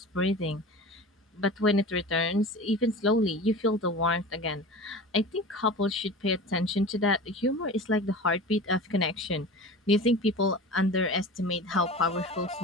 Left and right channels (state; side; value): normal; both; correlation 0.35